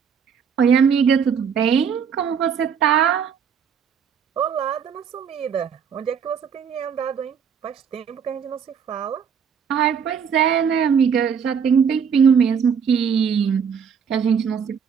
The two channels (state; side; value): quieter; left; 7.1 dB